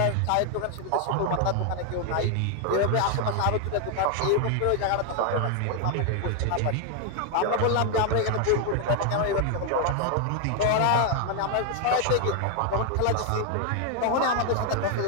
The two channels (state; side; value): different; both; correlation 0.00